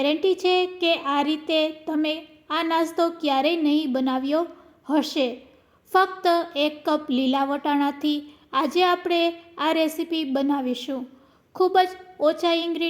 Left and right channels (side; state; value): both; identical; correlation 1.00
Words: છે કે આ રીતે તમે આ નાસ્તો ક્યારેય નહીં બનાવ્યો હશે। ફક્ત 1 કપ લીલા વટાણાથી આજે આપણે આ રેસીપી બનાવીશું। ખૂબ જ ઓછા